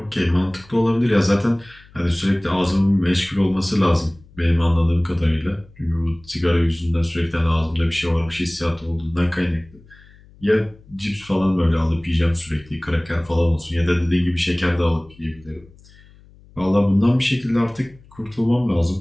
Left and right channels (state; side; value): noise; left; hum, 25 dB below the sound